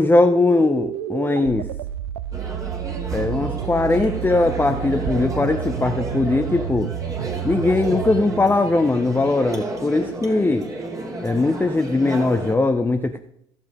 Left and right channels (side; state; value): both; normal; correlation 0.80